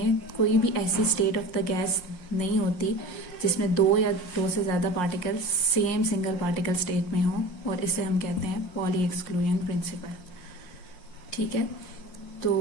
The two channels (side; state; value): right; late; 5.6 ms